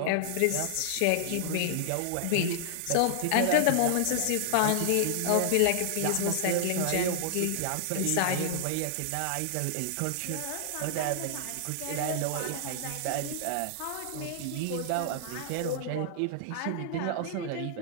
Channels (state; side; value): different; both; correlation -0.01